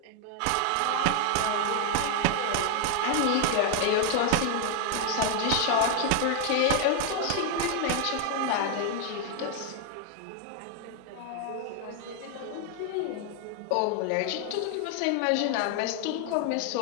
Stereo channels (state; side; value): different; both; correlation 0.00